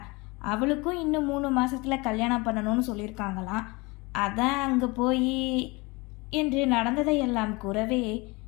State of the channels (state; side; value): quieter; right; 25.3 dB